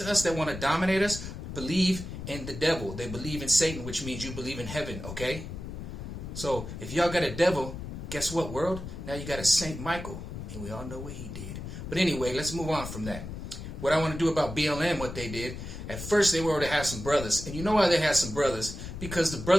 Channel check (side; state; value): left; noise; rumble, 9 dB below the sound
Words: us that want to dominate us believe in the devil. They believe in Satan, which means you believe in heaven. Okay? So if y'all got a devil, guess what, world? Now you got a Saint Michael, and we all know what he did. But anyway, let's move on from that. What I want to do about BLM, what they did, at first they were to have some brothers. And you know why they had some brothers? Because the